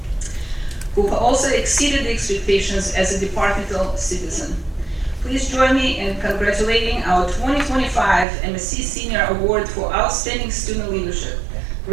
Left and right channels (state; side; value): drops out; left; at 8.2 s